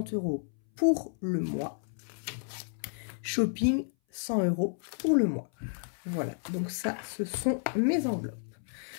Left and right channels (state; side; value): silent; right; 57 dB below the other